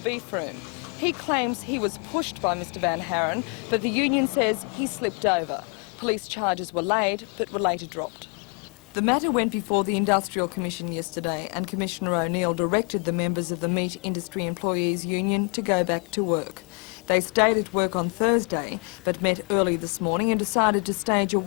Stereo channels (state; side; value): quieter; right; 36.8 dB